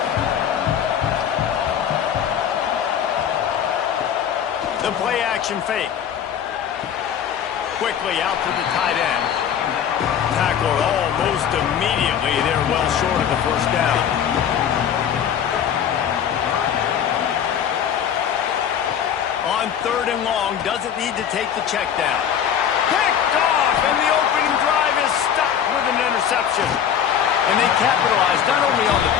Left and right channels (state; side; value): quieter; right; 8.8 dB